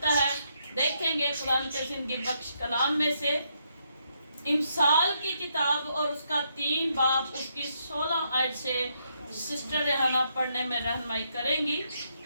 है। देखेंगे कुरान के जिंदगी बख्श कलाम में से इमसाल की किताब और उसका 3 बाब उसकी 16 आयत से सिस्टर रेहाना पढ़ने में रहनुमाई करेंगी।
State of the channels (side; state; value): both; inverted; correlation -0.76